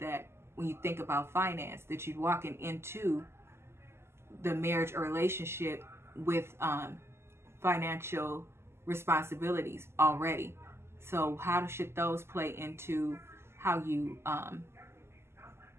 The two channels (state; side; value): late; left; 0.12 ms